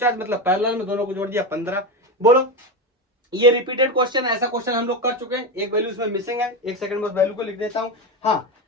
मतलब पैरेलल में दोनों को जोड़ दिया 15। बोलो ये रिपीटेड क्वेश्चन, ऐसा क्वेश्चन हम लोग कर चुके हैं, एक वैल्यू इसमें मिसिंग है, एक सेकंड में उस वैल्यू को लिख देता हूं। हाँ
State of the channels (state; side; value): normal; both; correlation 0.17